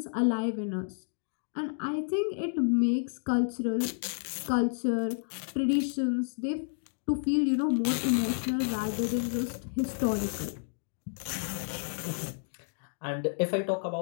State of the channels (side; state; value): right; silent; digital silence